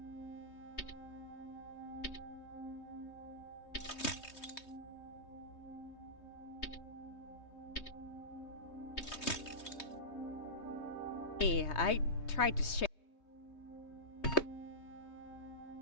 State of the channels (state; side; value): late; right; 3.2 ms